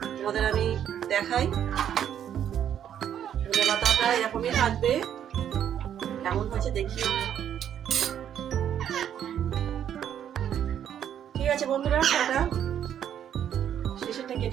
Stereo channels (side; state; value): left; quieter; 9.7 dB